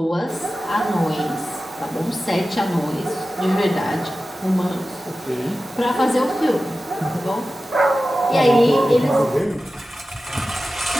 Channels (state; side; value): normal; both; correlation 0.94